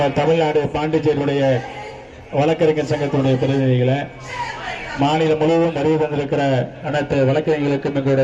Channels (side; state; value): both; identical; correlation 1.00